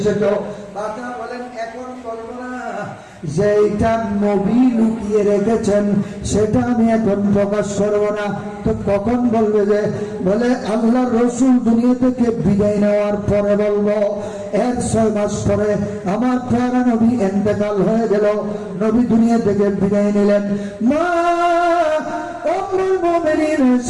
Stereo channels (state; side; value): identical; both; correlation 1.00